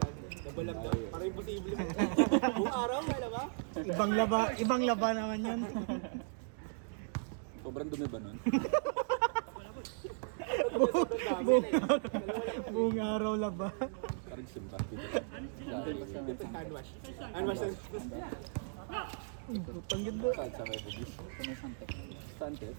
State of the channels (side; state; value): left; silent; digital silence